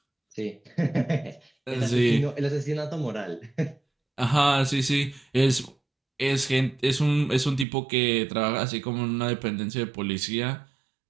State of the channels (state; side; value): drops out; left; at 7.7 s